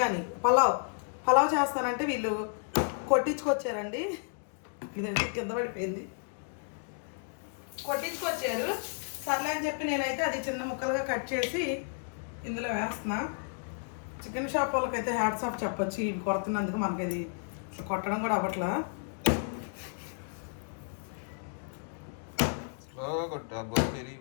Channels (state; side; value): silent; right; 56 dB below the other